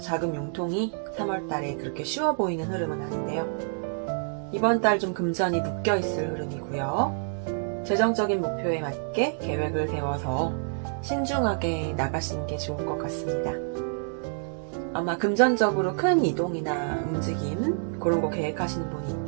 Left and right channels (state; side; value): silent; left; digital silence